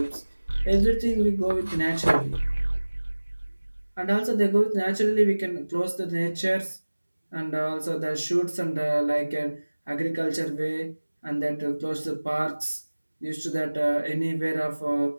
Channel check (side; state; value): both; inverted; correlation -1.00